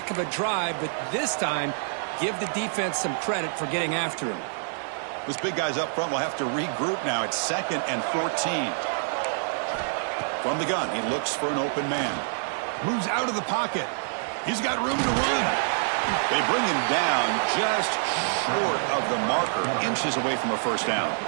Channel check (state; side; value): silent; left; digital silence